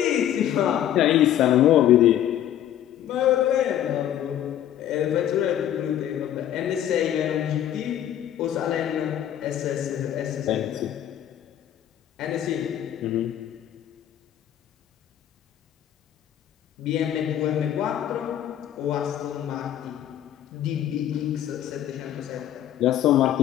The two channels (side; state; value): right; quieter; 11.2 dB